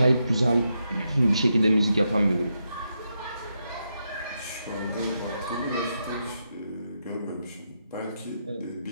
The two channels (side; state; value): both; inverted; correlation -0.84